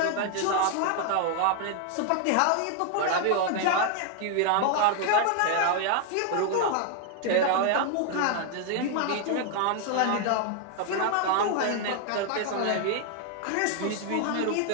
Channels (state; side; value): different; both; correlation 0.00